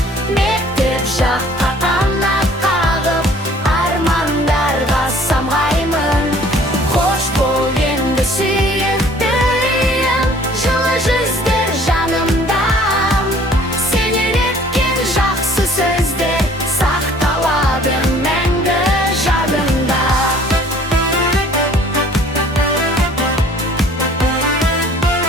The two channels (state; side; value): normal; both; correlation 0.54